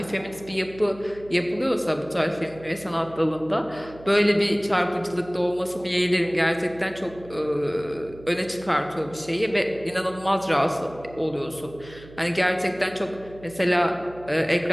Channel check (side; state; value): right; noise; hum, 19 dB below the sound